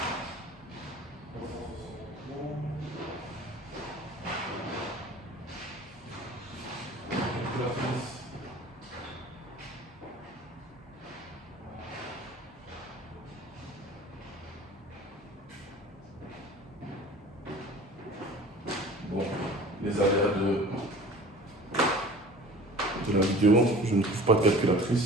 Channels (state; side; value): normal; both; correlation 0.43